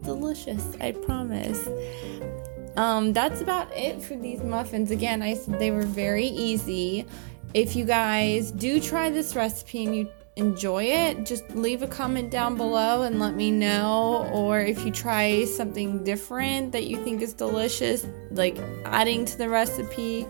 delicious, I promise. That's about it for these muffins. Again, I said they were very easy. If you guys do try this recipe and you enjoy it, just leave a comment down below and let me know. Or if you try something different that you think is delicious, like adding to the recipe,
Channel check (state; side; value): silent; left; 60 dB below the other